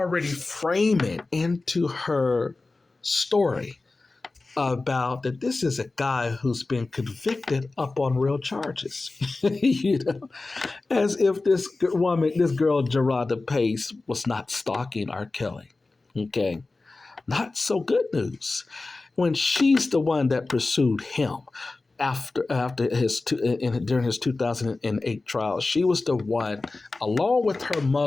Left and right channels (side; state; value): right; quieter; 3.4 dB